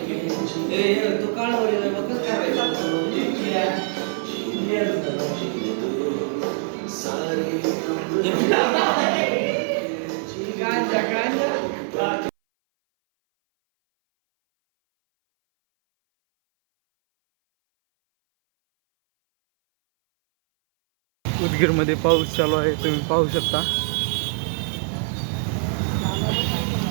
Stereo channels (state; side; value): silent; left; 59 dB below the other